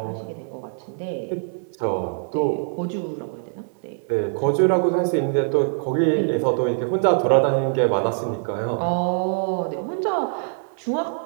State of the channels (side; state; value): left; silent; digital silence